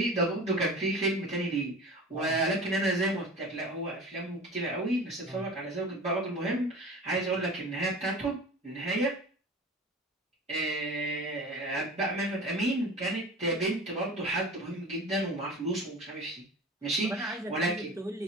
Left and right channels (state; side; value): normal; both; correlation 0.36